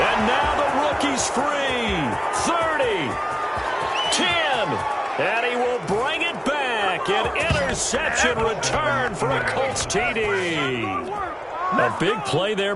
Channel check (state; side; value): identical; both; correlation 1.00